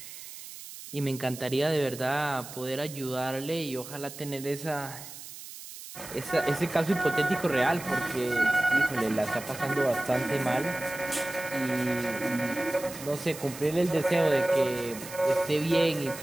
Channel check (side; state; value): right; noise; hiss, 13 dB below the sound